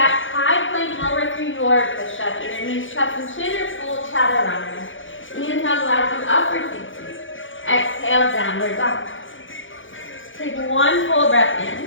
high plank, lower through your push-up. Either knees, chest, and chin, or full chaturanga. Inhale, glide through upward facing. Exhale, downward dog. Take one full breath in.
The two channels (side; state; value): right; late; 0.57 ms